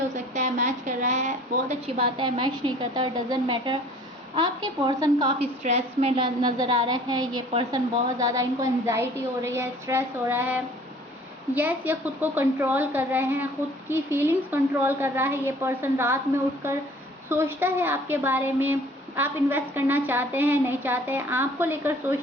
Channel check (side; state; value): both; normal; correlation 0.51